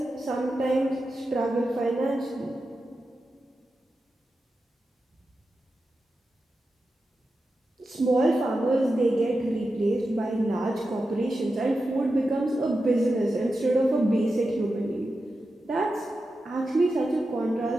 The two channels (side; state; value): both; normal; correlation 0.90